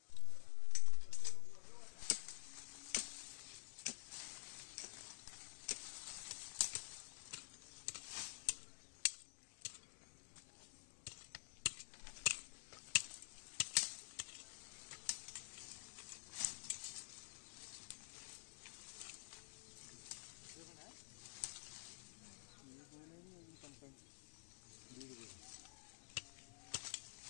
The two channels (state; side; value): silent; right; digital silence